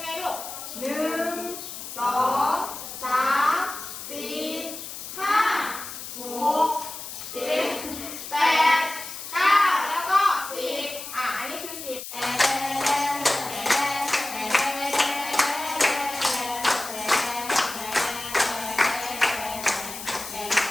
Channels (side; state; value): left; noise; hiss, 10 dB below the sound